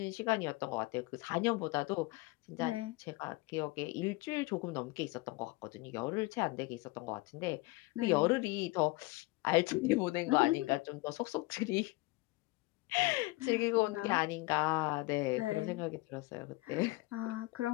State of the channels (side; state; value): right; quieter; 22.2 dB